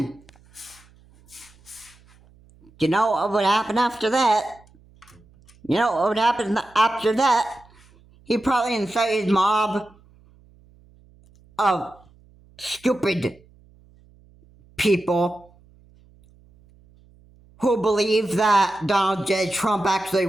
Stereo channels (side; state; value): right; noise; hum, 29 dB below the sound